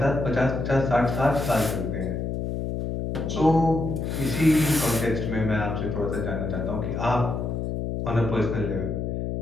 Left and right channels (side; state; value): left; noise; hum, 3 dB below the sound